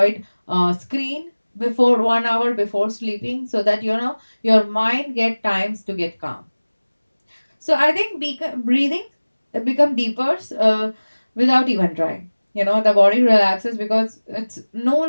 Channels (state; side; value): inverted; both; correlation -1.00